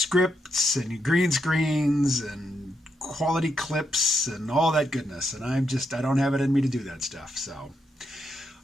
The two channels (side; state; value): both; normal; correlation 0.81